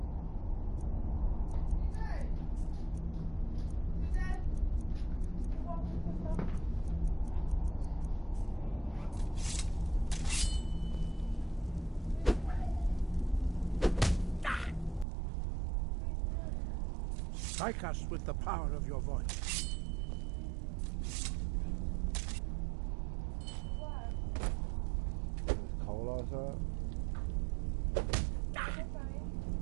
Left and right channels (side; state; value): left; drops out; at 15.1 s